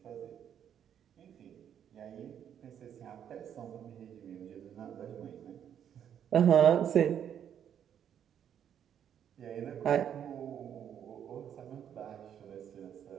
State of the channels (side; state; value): left; quieter; 9.2 dB